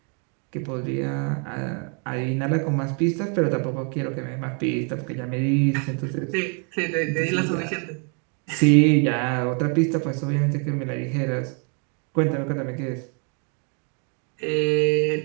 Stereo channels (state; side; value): quieter; left; 38.8 dB